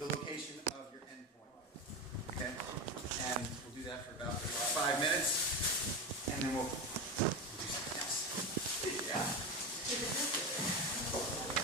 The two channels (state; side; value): normal; both; correlation 0.19